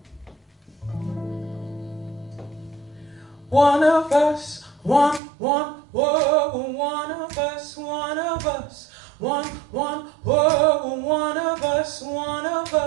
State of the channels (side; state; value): left; drops out; at 5.2 s